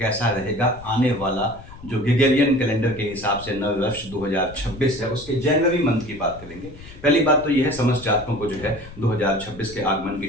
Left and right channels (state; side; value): noise; left; rumble, 17 dB below the sound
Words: रहेगा आने वाला जो ग्रेगोरियन कैलेंडर के हिसाब से नव वर्ष 2026 है, उसके जनवरी मंथ की बात करेंगे। पहली बात तो यह है, समस्त जातकों को जो है 2026 के आगमन की